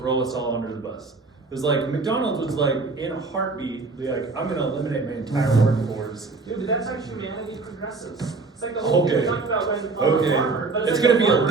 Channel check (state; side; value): quieter; left; 3.9 dB